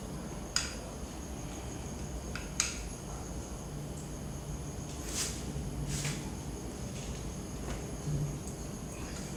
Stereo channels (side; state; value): both; identical; correlation 1.00